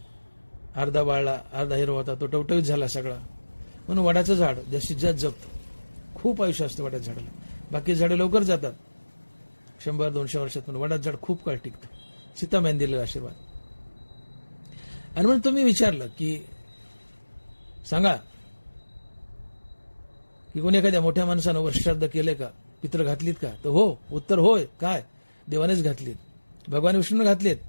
अर्धा वाळला, अर्धा हिरवा होता, तो टवटवीत झाला सगळा. म्हणून वडाचं झाड जास्तीत जास्त जगतं. खूप आयुष्य असतं वडाच्या झाडाला. बाकी झाडं लवकर जातात, 100-200 वर्षात. पण वडाचं झाड खूप काळ टिकतं. सीतामाईने दिलेला आशीर्वाद. आणि म्हणून तुम्ही विचारलं की सांगा की कोणी एखाद्या मोठ्या माणसानं वर्षश्राद्ध केलंय का, पित्र घातलीत का, तर हो, उत्तर होय. काय देवानेच घातलीत, भगवान विष्णूने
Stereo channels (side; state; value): both; inverted; correlation -1.00